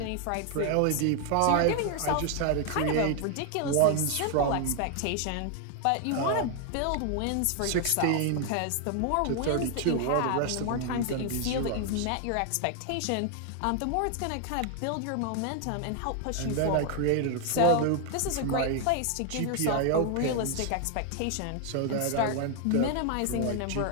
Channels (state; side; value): different; both; correlation 0.00